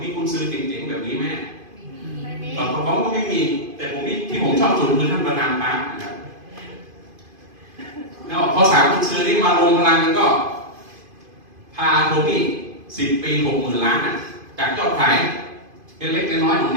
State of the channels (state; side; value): late; left; 2.5 ms